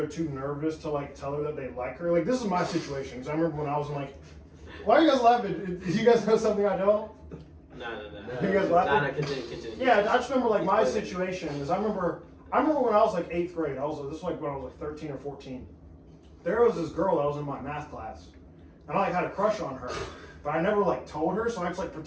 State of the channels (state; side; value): identical; both; correlation 1.00